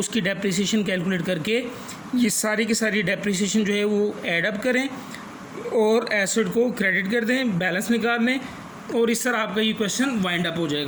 डेप्रिसिएशन कैलकुलेट करके ये सारी की सारी डेप्रिसिएशन जो है वो ऐड अप करें और एसेट को क्रेडिट कर दें, बैलेंस निकाल लें, और इस तरह आपका ये क्वेश्चन वाइंड अप हो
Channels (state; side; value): identical; both; correlation 1.00